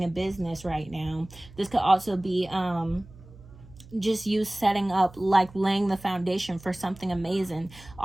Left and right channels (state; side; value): noise; right; hum, 21 dB below the sound